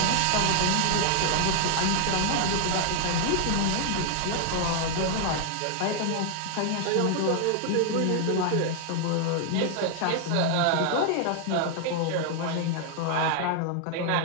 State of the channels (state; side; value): different; both; correlation 0.00